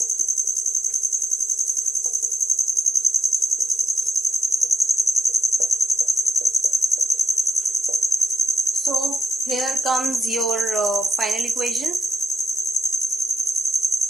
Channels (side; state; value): both; normal; correlation 0.85